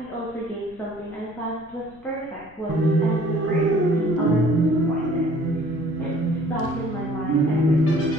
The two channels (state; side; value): noise; left; rumble, 25 dB below the sound